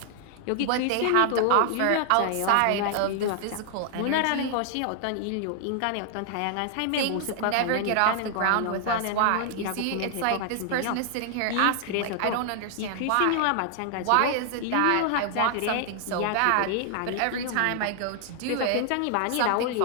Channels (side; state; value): both; different; correlation 0.00